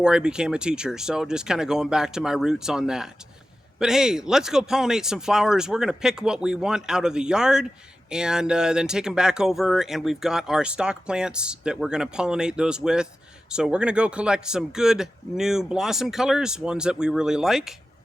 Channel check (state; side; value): normal; both; correlation 0.93